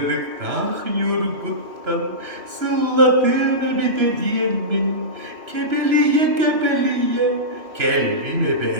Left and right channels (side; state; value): left; late; 3.0 ms